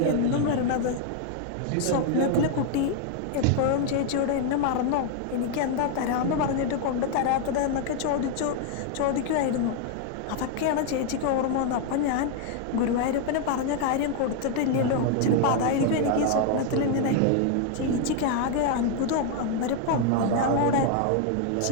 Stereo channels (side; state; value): both; different; correlation 0.00